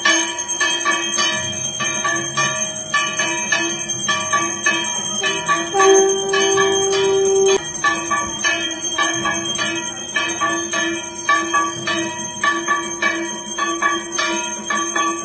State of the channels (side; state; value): both; identical; correlation 1.00